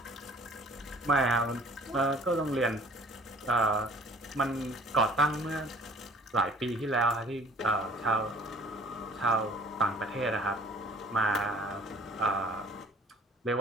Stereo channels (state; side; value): normal; both; correlation 0.52